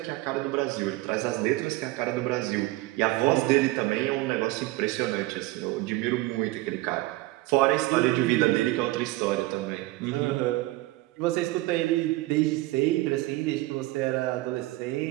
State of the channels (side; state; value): left; quieter; 18.9 dB